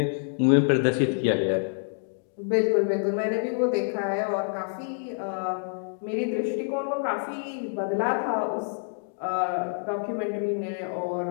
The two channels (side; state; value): right; silent; digital silence